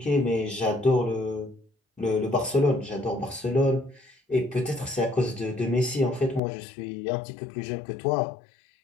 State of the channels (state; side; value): drops out; right; at 6.4 s